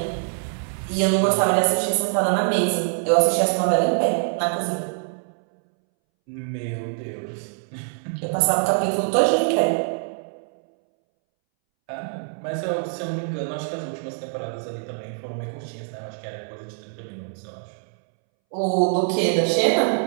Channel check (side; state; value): left; silent; 63 dB below the other